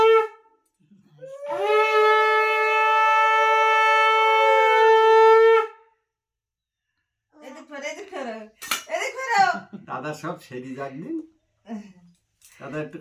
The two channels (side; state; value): both; identical; correlation 1.00